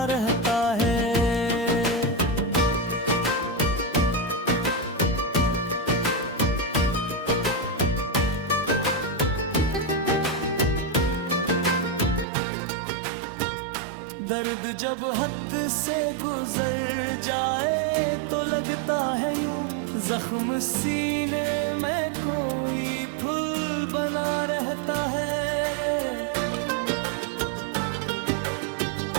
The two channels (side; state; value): left; drops out; at 12.2 s